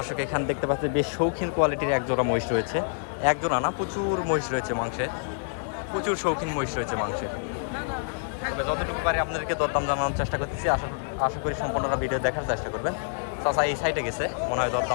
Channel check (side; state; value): right; silent; 60 dB below the other